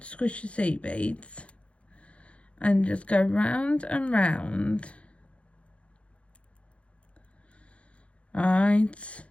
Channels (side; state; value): right; late; 0.061 ms